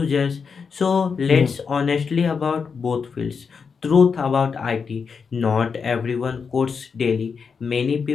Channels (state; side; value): quieter; right; 5.7 dB